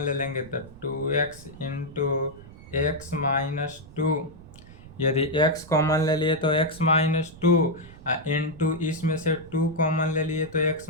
लेंगे तो 2x इंटू एक्स माइनस 2, यदि x कॉमन ले लिए तो x माइनस 2 इंटू इसमें से 2 कॉमन ले लिए तो x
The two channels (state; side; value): noise; right; rumble, 19 dB below the sound